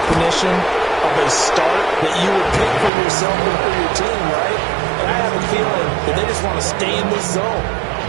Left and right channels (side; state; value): left; drops out; at 2.9 s